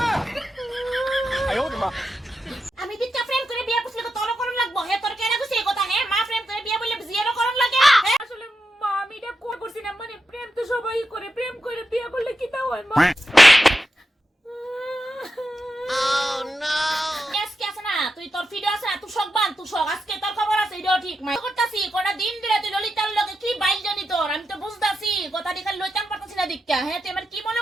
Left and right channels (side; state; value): both; normal; correlation 0.88